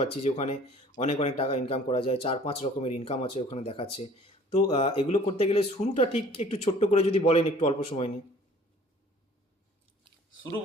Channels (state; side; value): normal; both; correlation 0.52